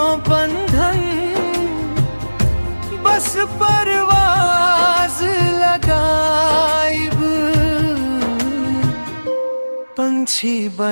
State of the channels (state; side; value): inverted; both; correlation -1.00